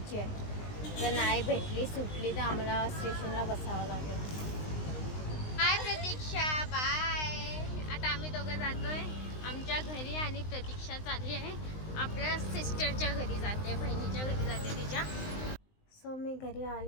आहे. जर नाही भेटली सुटली तर आम्हाला स्टेशनला बसावं लागेल. बाय प्रतीक्षा, बाय. आता आम्ही दोघं जातोय आमच्या घरी आणि प्रतीक्षा चालली आहे आपल्या सिस्टरच्या घरी जाते, बहिणीच्या घरी जाते तिच्या. सो मी घरी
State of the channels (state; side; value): late; right; 19 ms